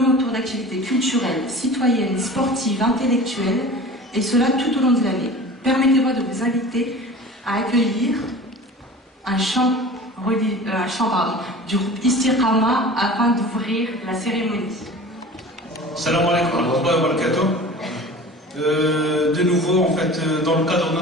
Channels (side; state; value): both; normal; correlation 0.39